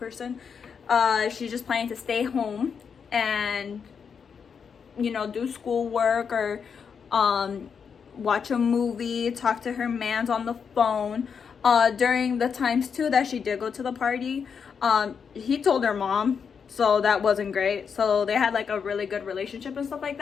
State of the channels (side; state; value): right; quieter; 6.5 dB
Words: She's just planning to stay home and, you know, do schoolwork or watch a movie, talk to her mans on the phone. During the times too that she did go to the party, he told her mom, so that wasn't great. So they had like a really good relationship and stuff like